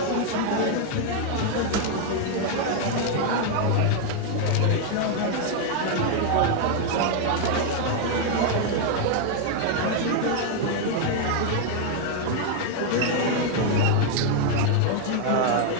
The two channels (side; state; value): both; different; correlation 0.00